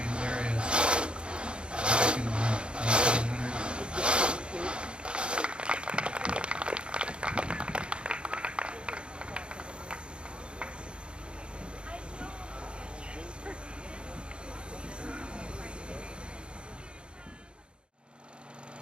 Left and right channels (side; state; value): left; late; 0.055 ms